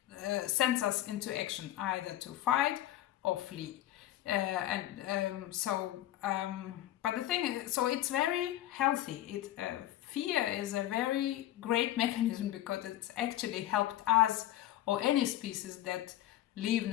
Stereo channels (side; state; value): right; quieter; 13.9 dB